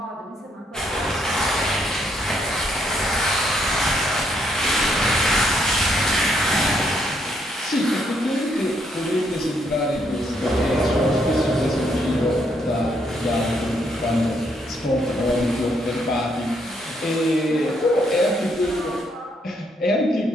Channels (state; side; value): normal; both; correlation 0.73